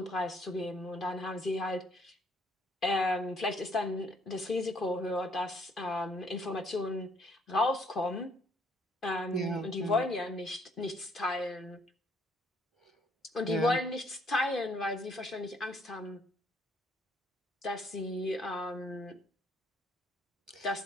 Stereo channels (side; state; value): both; normal; correlation 0.66